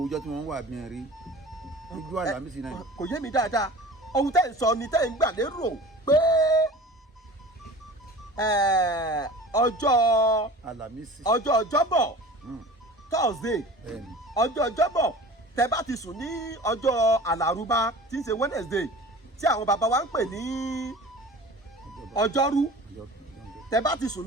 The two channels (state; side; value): normal; both; correlation 0.40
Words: ọjọ́ tí wọ́n wà bí n rí ojú àlámísì náà. kò yé mi dáadáa ohun tẹ́ ń sọ ni tẹ́ ń gbà lérò pé ọjọ́ ọjọ́bọ̀ Thursday ọjọ́ ọjọ́bọ̀ tẹ́ bá ti sùn ní ọjọ́ àlàrúbá tí ń ṣe Wednesday tí àwọn bàbá wa ń pè ní ọjọ́rú tẹ́ bá ti sùn